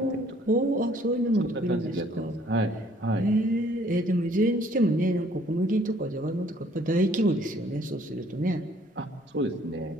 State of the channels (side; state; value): both; normal; correlation 0.60